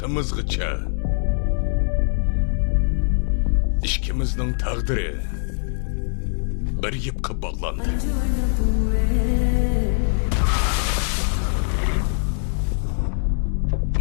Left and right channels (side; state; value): right; silent; digital silence